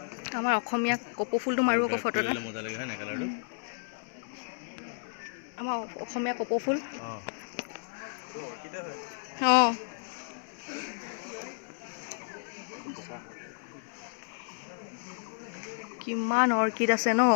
আমাৰ অসমীয়া কপৌ ফুলটো মাৰো আকৌ ফটো এটা মজা লাগে হয় না কালাৰটো আমাৰ অসমীয়া কপৌ ফুল অঁ অৰ্কিডে হয় অঁ কিমান অৰ্কিড আছে ন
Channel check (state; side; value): silent; right; digital silence